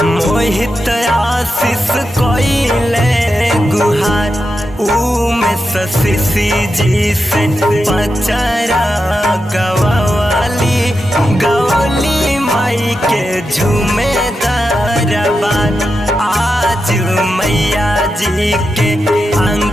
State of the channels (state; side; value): normal; both; correlation 0.88